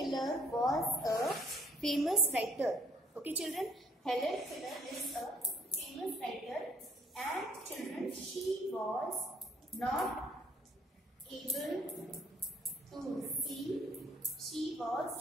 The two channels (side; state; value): both; normal; correlation 0.61